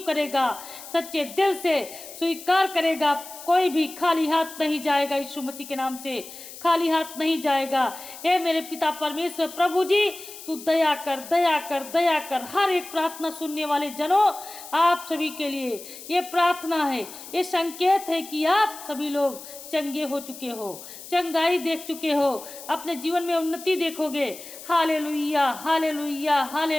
करेगा, सच्चे दिल से स्वीकार करेगा, कोई भी खाली हाथ नहीं जाएगा यीशु मसीह के नाम से, खाली हाथ नहीं जाएगा। हे मेरे पिता परमेश्वर प्रभु जी, तू दया कर, दया कर, दया कर। हर एक प्रार्थना सुनने वाले जनों, आप सभी के लिए ये प्रार्थना है, ये संकेत है कि आप सभी लोग चंगे हो चुके हो, चंगाई देख चुके हो, अपने जीवन में उन्नति देखोगे। हालेलुया, हालेलुया,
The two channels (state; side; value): noise; left; hiss, 14 dB below the sound